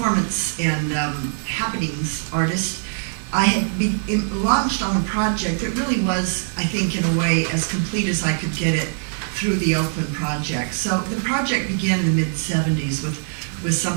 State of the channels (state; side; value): silent; left; digital silence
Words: and happenings artist, I had been launched on a project that really was, I think, in a way, as complete as I could get it through the Oakland project. So the project began in the mid-70s with